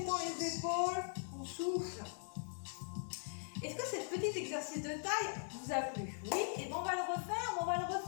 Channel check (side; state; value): right; silent; digital silence